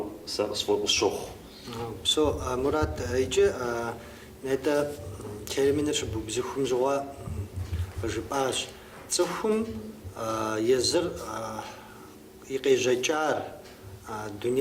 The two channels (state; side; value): identical; both; correlation 1.00